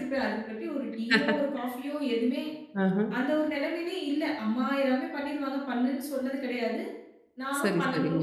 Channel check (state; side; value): identical; both; correlation 1.00